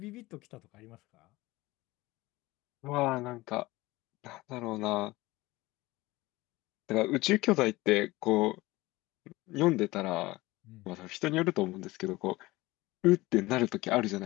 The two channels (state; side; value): quieter; right; 20.0 dB